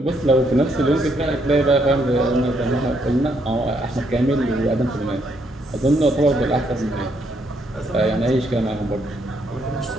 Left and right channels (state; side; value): normal; both; correlation 0.73